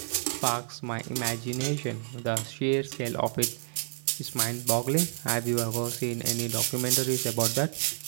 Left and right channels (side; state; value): left; silent; 58 dB below the other